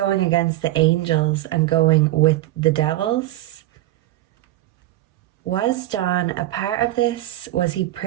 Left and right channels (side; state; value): left; quieter; 16.0 dB